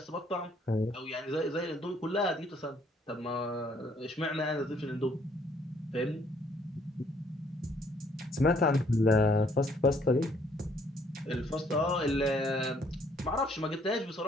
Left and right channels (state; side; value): normal; both; correlation 0.64